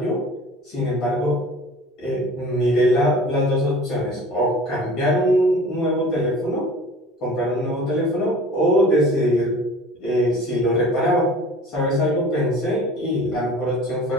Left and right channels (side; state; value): both; normal; correlation 0.43